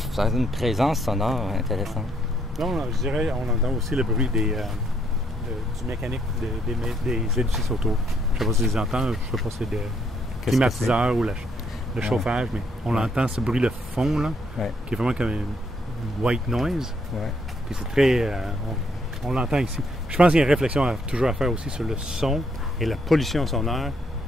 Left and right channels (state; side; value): normal; both; correlation 0.72